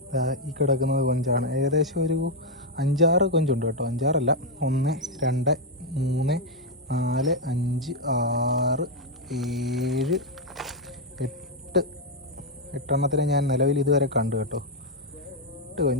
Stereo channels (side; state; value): both; normal; correlation 0.01